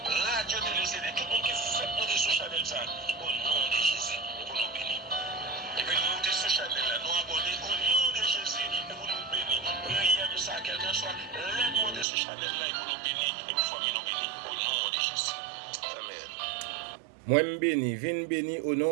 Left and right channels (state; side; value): drops out; left; at 12.1 s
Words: radio télé CD, tout le monde qui fait monter sur Chanel ça, au nom de Jésus, pour nous bénir. Et puis nous monter sur Chanel là, nous abonner au nom de Jésus, et pour nous bénir. Priez de ça, quelqu'un soit, l'aide monter sur Chanel là, et pour nous bénir, et pour famille nous bénir, au nom de Jésus. Amen. Moi, je bénis, viens béni au